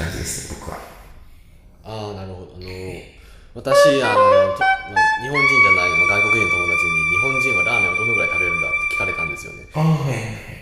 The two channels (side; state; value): both; identical; correlation 1.00